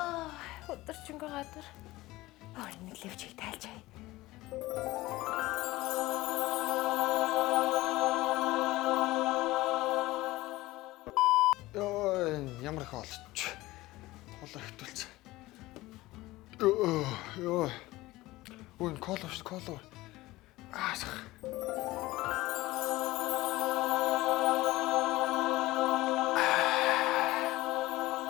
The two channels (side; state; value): right; quieter; 18.6 dB